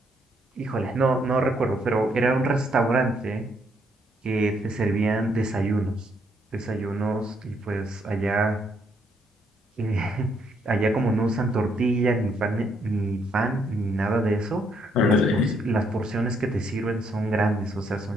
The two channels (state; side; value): normal; both; correlation 0.72